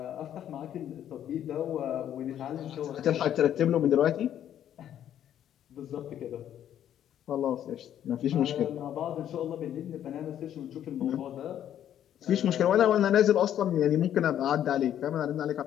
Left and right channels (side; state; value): right; quieter; 10.6 dB